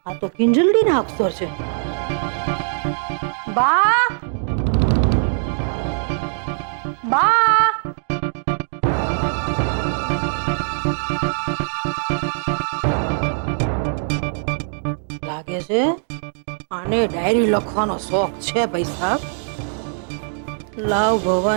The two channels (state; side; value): silent; left; digital silence